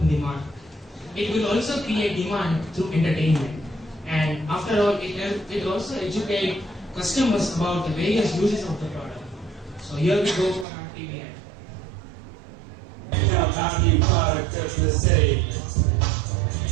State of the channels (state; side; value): drops out; left; at 10.7 s